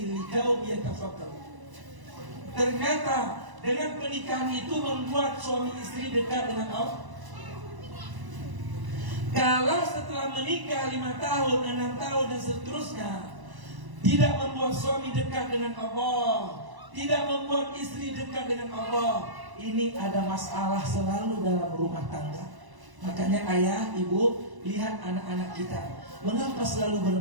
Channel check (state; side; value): late; left; 1.0 ms